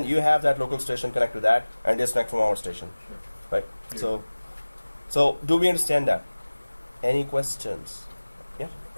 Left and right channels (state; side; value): inverted; both; correlation -1.00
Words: you have that local station connect to that and disconnect from our station, Sure. right? Clear. So do we understand that? Any questions? Yeah.